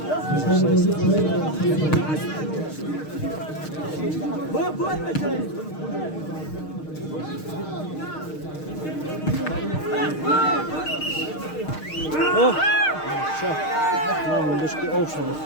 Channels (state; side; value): late; right; 6.5 ms